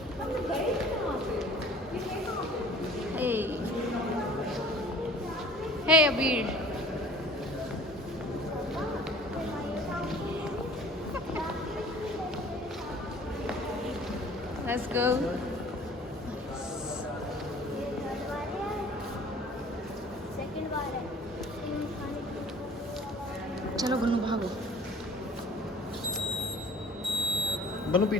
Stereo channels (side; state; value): both; normal; correlation 0.48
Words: Hey, hey Abir. Let's go. चलो बनू भागो. बनू